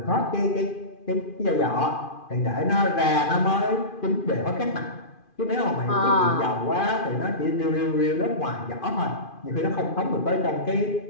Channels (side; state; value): right; late; 2.5 ms